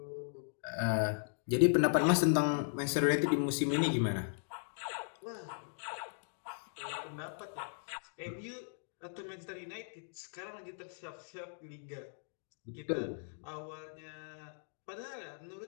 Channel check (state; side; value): silent; right; digital silence